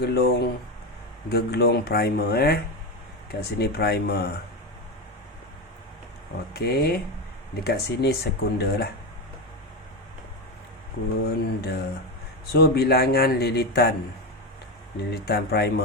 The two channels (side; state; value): both; normal; correlation 0.15